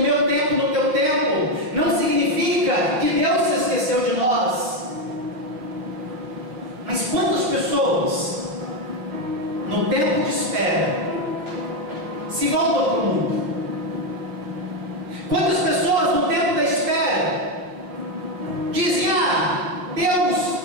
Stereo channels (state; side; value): late; left; 5.5 ms